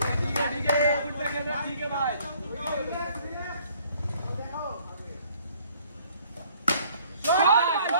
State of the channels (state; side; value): inverted; both; correlation -0.60